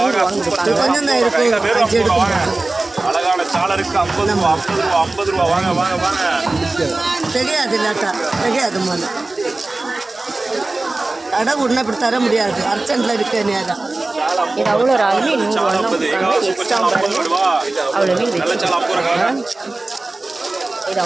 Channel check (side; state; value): left; quieter; 3.1 dB